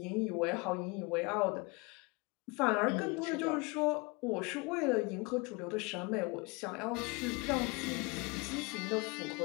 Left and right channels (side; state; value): right; quieter; 27.6 dB